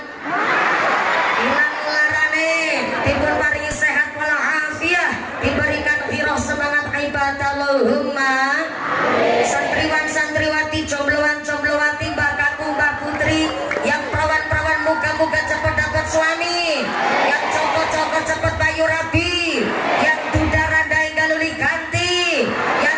larane, dipun paringi sehat walafiat, diberikan hiroh semangat ibadah. Allahumma. Santriwan santriwati, jombloan jomblowati, mbak kakung mbak putri, yang perawan-perawan moga-moga cepat dapat suami, yang cokot-cokot cepat bayu rabi, yang duda randai galuli ganti,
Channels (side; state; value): both; identical; correlation 1.00